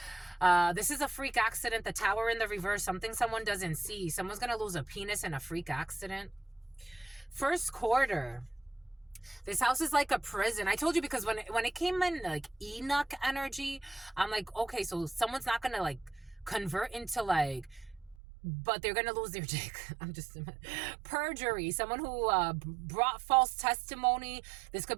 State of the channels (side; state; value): left; drops out; at 18.2 s